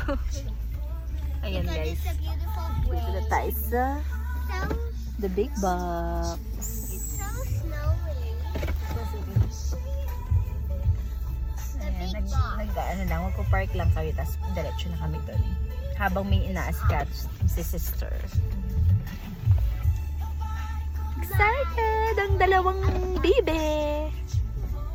Ayan, Because guys. it's a beautiful Dito na way. tayo sa So, the big box. it's so snowy. The Ayan, big box. ano lang, magpo-park lang kami, tapos diretso na kami doon. Habang may ina-ascatch si sister. Excited! Ang dalawang bibe!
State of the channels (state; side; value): identical; both; correlation 1.00